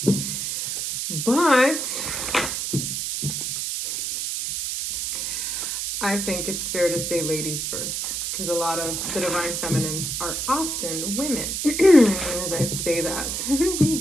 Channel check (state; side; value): noise; right; hiss, 2 dB below the sound